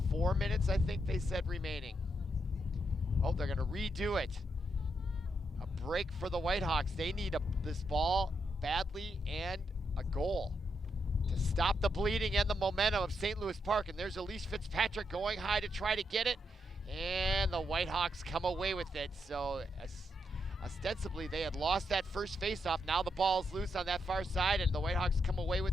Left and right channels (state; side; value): normal; both; correlation 0.81